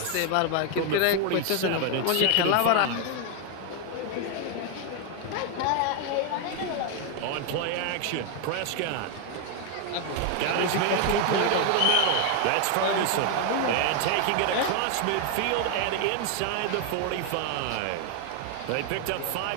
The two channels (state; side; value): different; both; correlation 0.01